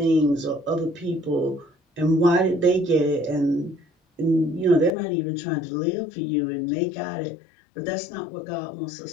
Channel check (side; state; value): right; drops out; at 5.0 s